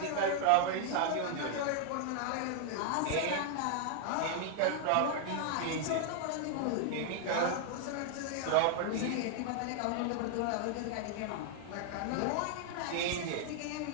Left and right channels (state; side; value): different; both; correlation 0.00